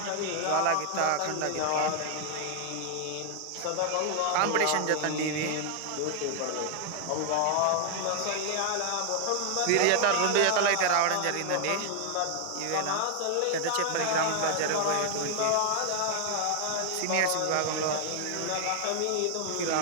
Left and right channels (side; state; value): both; different; correlation 0.00